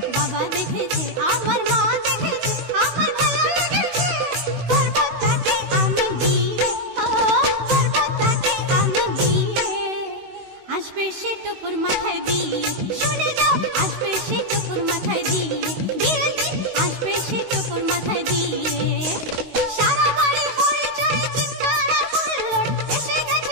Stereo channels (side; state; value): left; late; 16 ms